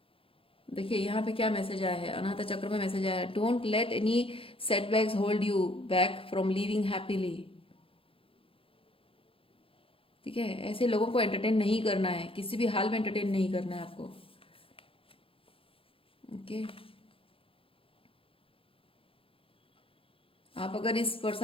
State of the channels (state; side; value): late; right; 0.27 ms